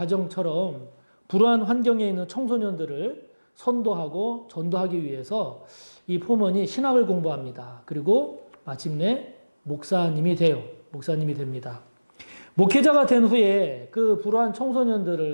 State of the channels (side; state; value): both; inverted; correlation -1.00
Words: 불우한 환경에 있는 청소년들을 선도하고 전도하기 위해서 이 포먼이 신학을 공부합니다. 그리고 마침내 목사님이 됩니다. 목회자가 된 후에 그 불우한